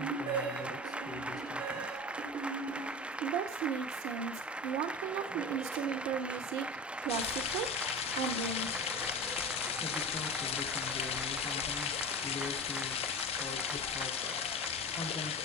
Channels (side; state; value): both; normal; correlation 0.30